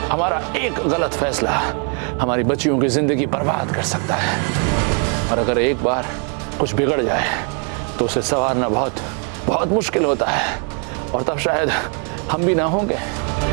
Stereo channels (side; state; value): left; quieter; 39.2 dB